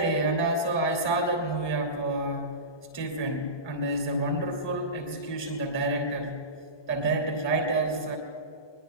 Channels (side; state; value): right; late; 1.2 ms